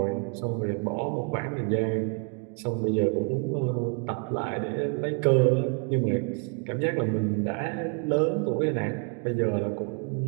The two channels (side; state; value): left; quieter; 35.9 dB